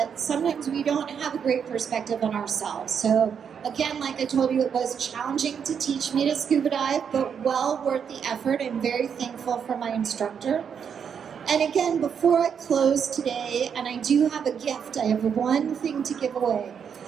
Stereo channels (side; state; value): left; quieter; 7.3 dB